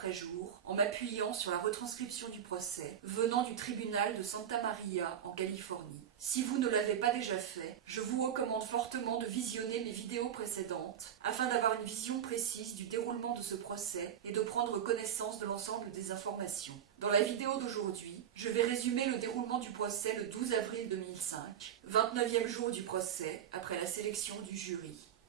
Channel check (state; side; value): quieter; left; 9.3 dB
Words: jour en m'appuyant sur la retranscription du procès venant du tribunal de Santa Maria en Californie. Si vous ne l'avez pas déjà fait, je vous recommande fortement de visionner mes vidéos précédentes afin d'avoir une vision précise du déroulement de ce procès et de prendre connaissance de l'ensemble des informations. Dans la vidéo d'aujourd'hui, je vais résumer le déroulement du procès le 12 avril 2005, 29e jour du procès après la sélection du jury.